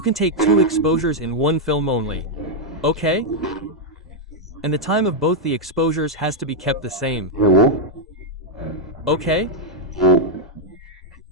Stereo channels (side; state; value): both; normal; correlation -0.01